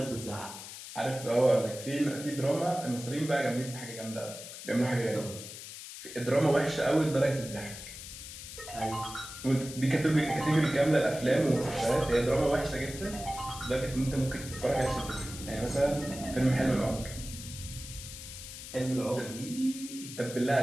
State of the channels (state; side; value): noise; left; hiss, 12 dB below the sound